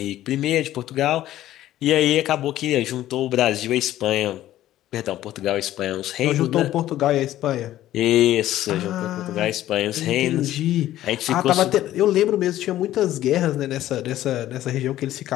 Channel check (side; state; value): right; quieter; 13.7 dB